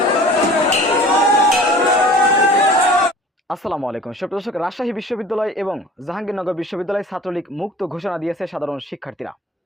আসসালামু আলাইকুম সুপ্রিয় দর্শক, রাজশাহী বিশ্ববিদ্যালয় এবং জাহাঙ্গীরনগর বিশ্ববিদ্যালয় ছাত্রলীগ মুক্ত ঘোষণা দিয়েছে সাধারণ শিক্ষার্থীরা।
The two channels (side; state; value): both; normal; correlation 0.44